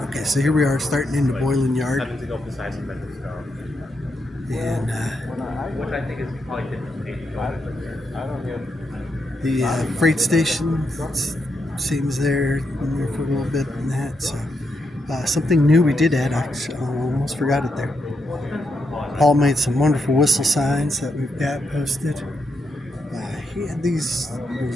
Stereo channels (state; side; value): normal; both; correlation 0.81